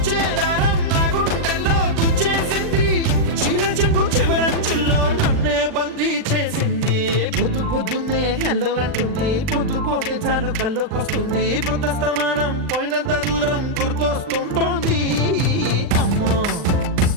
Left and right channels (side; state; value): left; late; 39 ms